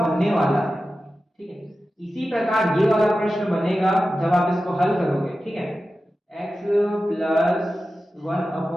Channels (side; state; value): both; normal; correlation 0.93